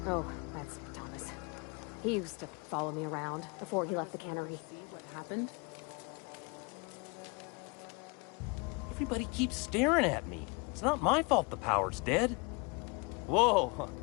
Oh, that's Thomas. He used to follow me around before he left the cannery. See what happened? Everybody keeps staring at me. It's not my fault the power's dead. Whoa,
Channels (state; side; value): quieter; right; 30.3 dB